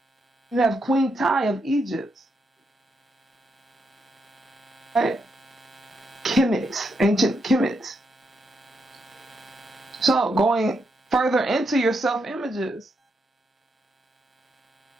You have Queen Tai of Egypt. Right? Kemet, ancient Kemet. So going further into your self-images,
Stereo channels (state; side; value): normal; both; correlation 0.81